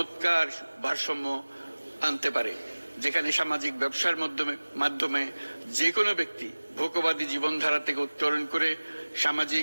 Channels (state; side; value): inverted; both; correlation -1.00